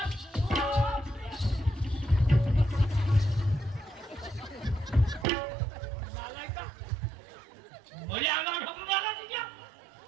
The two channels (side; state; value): left; drops out; at 5.2 s